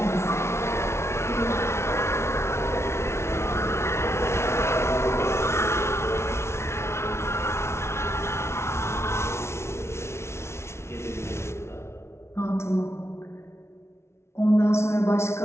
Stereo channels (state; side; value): late; right; 0.13 ms